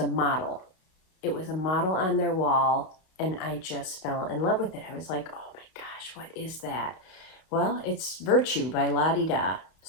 a model. It was a model on their wall. And I just fell in love with it. I was like, oh my gosh, what is that? Well, it's Virtue by La Di Da.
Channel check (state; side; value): late; right; 32 ms